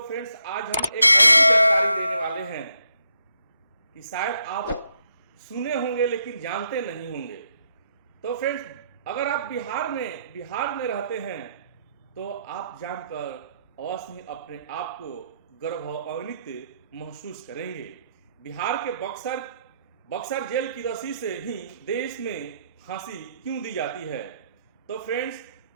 फ्रेंड्स, आज हम एक जानकारी देने वाले हैं कि शायद आप सुने होंगे लेकिन जानते नहीं होंगे। तो फ्रेंड्स, अगर आप बिहार में रहते हैं तो आप जानकर अवश्य ही अपने आप को गौरवान्वित महसूस करेंगे। बिहार के बक्सर जेल की रस्सी से ही देश में फांसी क्यों दी जाती है। तो फ्रेंड्स,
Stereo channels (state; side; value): inverted; both; correlation -0.78